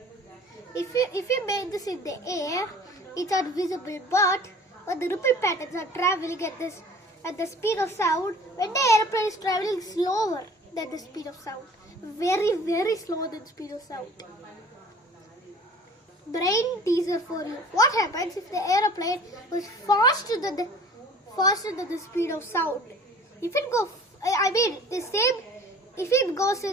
you make this in the air, it's not visible. But when the ripple patterns are traveling at the speed of sound, when the airplane is traveling slower than the speed of sound, very slower than the speed of sound. Brain teaser for you. What happens if the airplane was faster than the speed of sound? If it goes, if it goes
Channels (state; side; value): normal; both; correlation 0.47